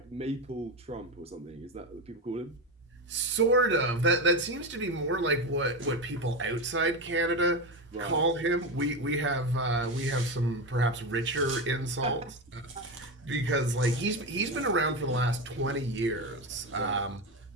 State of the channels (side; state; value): both; normal; correlation 0.16